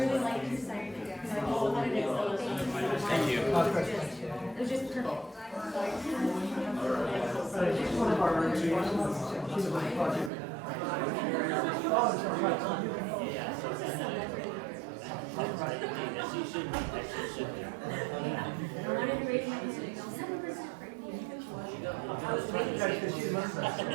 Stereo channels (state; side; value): drops out; left; at 10.3 s